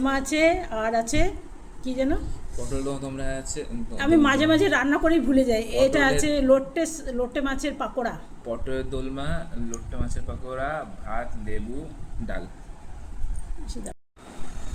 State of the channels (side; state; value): both; identical; correlation 1.00